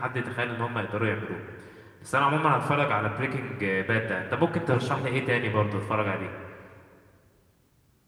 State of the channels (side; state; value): both; identical; correlation 1.00